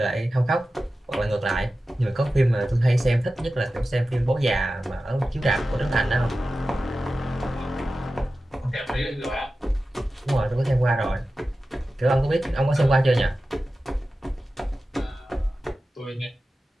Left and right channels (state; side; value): normal; both; correlation 0.94